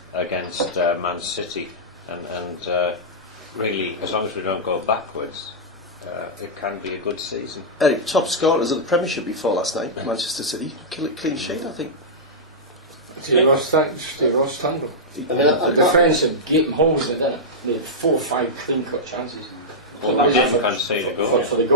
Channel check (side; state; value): both; normal; correlation -0.11